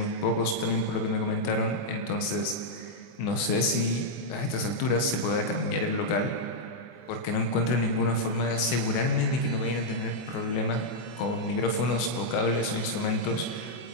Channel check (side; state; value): right; late; 24 ms